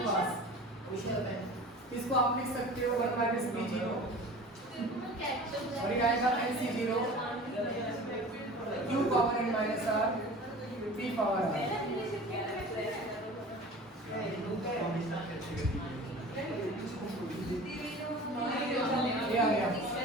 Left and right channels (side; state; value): both; normal; correlation 0.39